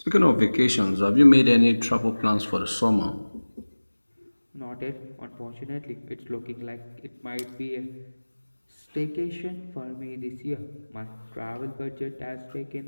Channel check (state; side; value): inverted; both; correlation -1.00